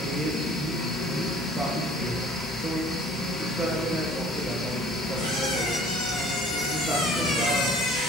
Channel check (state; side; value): normal; both; correlation 0.50